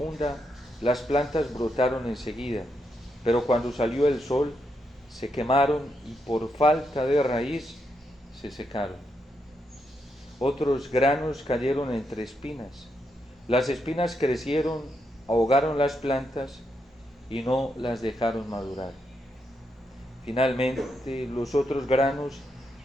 las plantas brotaron enseguida, pero cuando salió el sol, se quemaron y por falta de raíz se secaron. Otros granos cayeron entre espinas. Las espinas crecieron, ahogaron las plantas y no las dejaron madurar. Finalmente, los otros granos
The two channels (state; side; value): normal; both; correlation 0.81